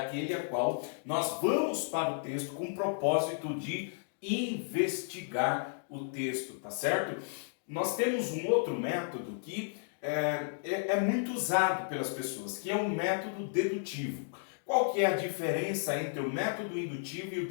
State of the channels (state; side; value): silent; right; digital silence